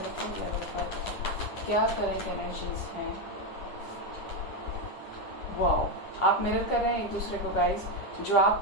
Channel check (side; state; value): right; late; 9.7 ms